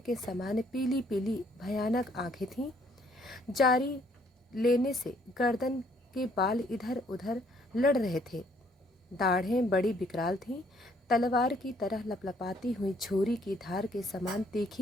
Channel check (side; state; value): both; normal; correlation 0.65